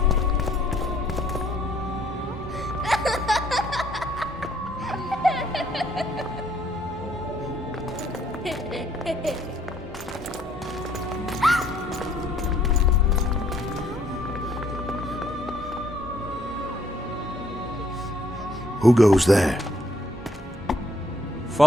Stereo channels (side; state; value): both; normal; correlation 0.67